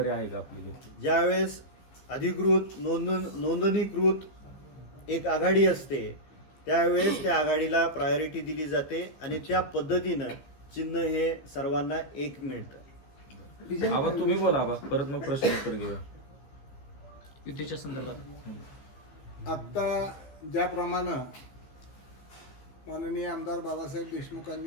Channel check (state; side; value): late; right; 15 ms